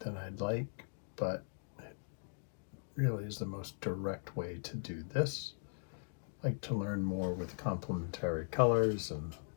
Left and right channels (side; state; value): right; silent; digital silence